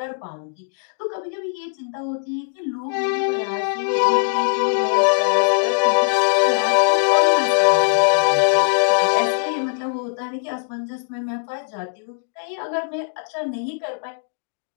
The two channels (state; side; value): silent; right; digital silence